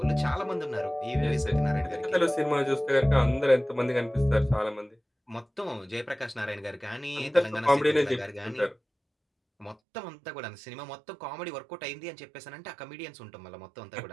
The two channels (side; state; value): left; drops out; at 9.8 s